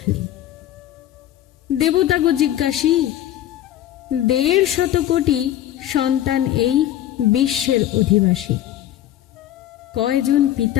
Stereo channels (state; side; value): quieter; right; 12.6 dB